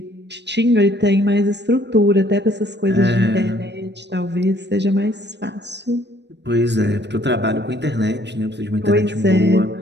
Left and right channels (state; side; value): late; left; 0.50 ms